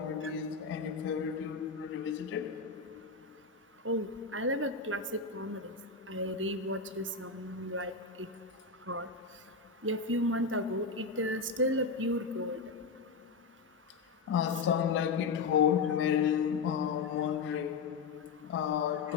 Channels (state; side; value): quieter; right; 4.6 dB